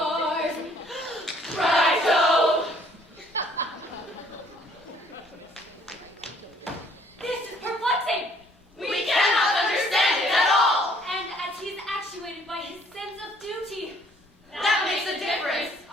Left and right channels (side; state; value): both; normal; correlation 0.61